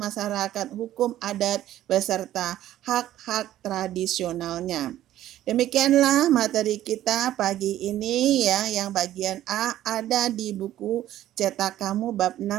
hukum adat beserta hak-hak tradisionalnya. Demikianlah materi kita pagi ini ya, yang bagian A ada di buku cetak kamu bab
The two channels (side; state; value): left; quieter; 13.2 dB